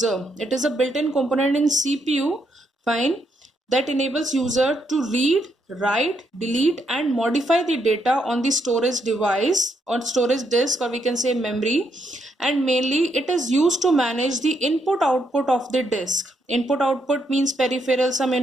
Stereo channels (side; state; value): both; normal; correlation 0.76